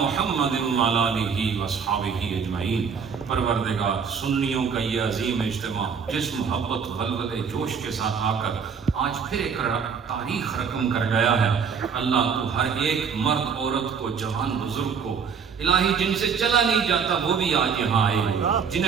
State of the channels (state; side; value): quieter; left; 6.4 dB